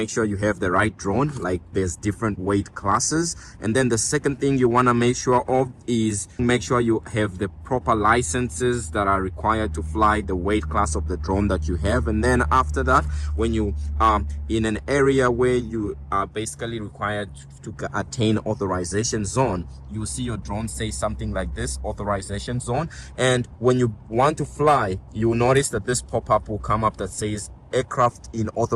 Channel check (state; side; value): identical; both; correlation 1.00